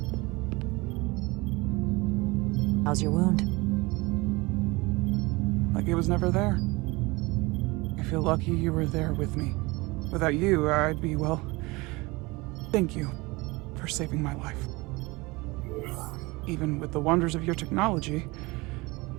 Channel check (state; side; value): quieter; left; 23.7 dB